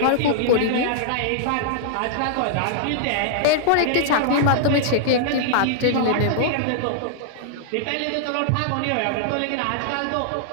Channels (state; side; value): different; both; correlation -0.01